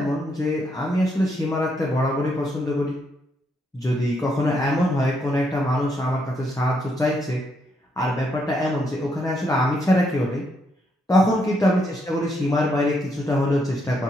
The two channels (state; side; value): normal; both; correlation 0.76